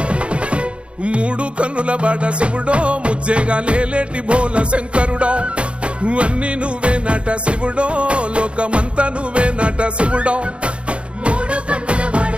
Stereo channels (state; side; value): late; left; 0.059 ms